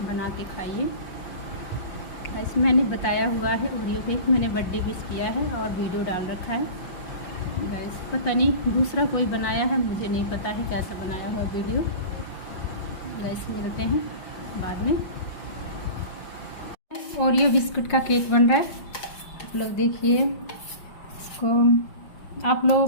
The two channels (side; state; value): right; late; 5.5 ms